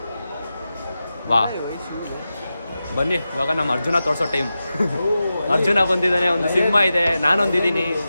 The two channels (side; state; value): both; inverted; correlation -0.92